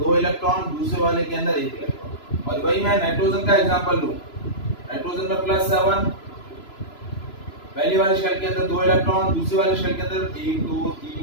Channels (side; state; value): right; late; 3.0 ms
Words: 2 इलेक्ट्रॉन, दूसरे वाले के अंदर 1 इलेक्ट्रॉन। और वही मैं नाइट्रोजन का एग्जांपल लूं, नाइट्रोजन में +7, पहली वाले शेल के अंदर 2 इलेक्ट्रॉन, दूसरे वाले शेल के अंदर 1, 2,